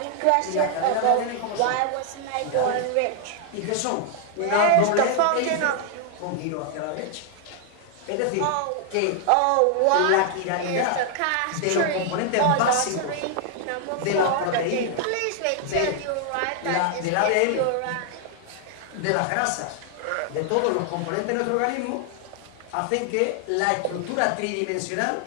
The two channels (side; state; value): both; different; correlation 0.00